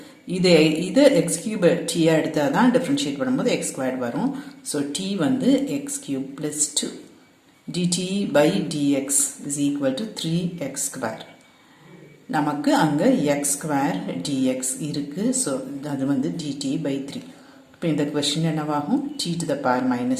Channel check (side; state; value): both; identical; correlation 1.00